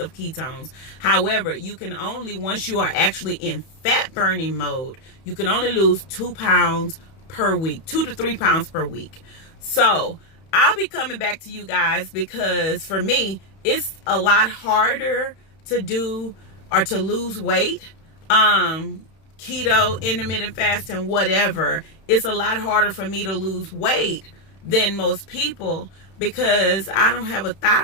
ketones. However, you can only, once you are actually in fat burning mode, you can only lose 2 pounds per week, 2 to 3 pounds per week. So I'll be coming back to you guys, because for me, it's a lot harder to do or to lose weight. Keto, intermittent fasting, whatever, it's a lot harder for me to lose weight than most people, because I don't have a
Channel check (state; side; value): late; right; 31 ms